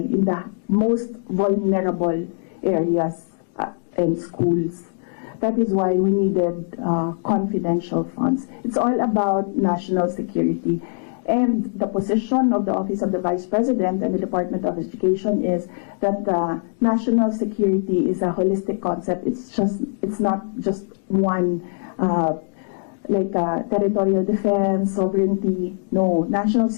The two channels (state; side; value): silent; right; digital silence